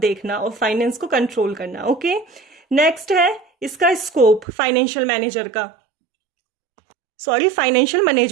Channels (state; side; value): drops out; left; at 4.5 s